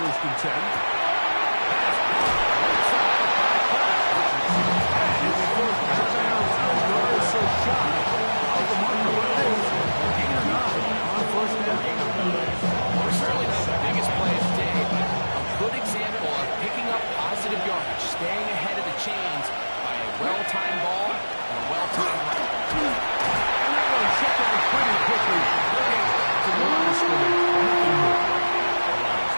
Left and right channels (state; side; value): inverted; both; correlation -1.00